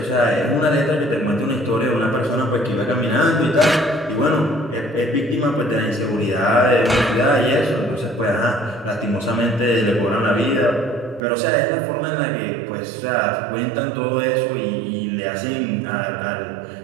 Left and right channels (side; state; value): left; drops out; at 11.2 s